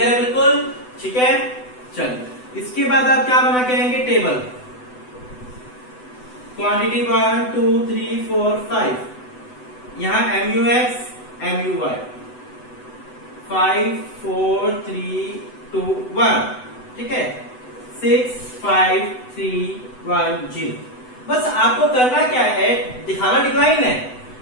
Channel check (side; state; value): right; late; 8.0 ms